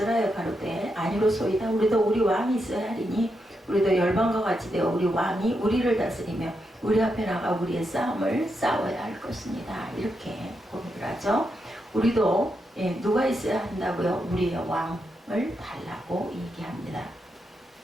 가로되 아니로소이다. 우리도 우리 왕이 있어야 하리니 우리도 열방과 같이 되어 우리 왕이 우리를 다스리며 우리 앞에 나가 우리의 싸움을 싸워야 할 것입니다. 이렇게 고백을 하죠. 우리도 누가 있어야 한다고요? 우리의 왕을 달라고 얘기합니다.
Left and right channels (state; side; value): normal; both; correlation 0.84